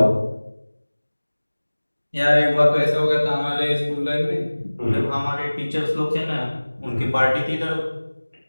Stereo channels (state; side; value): inverted; both; correlation -1.00